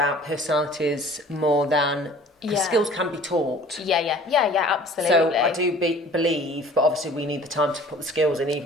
personalities more than. Because skills can be taught. Yeah, absolutely. So I do believe, but obviously we need the time to put the skills in,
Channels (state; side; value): normal; both; correlation 0.48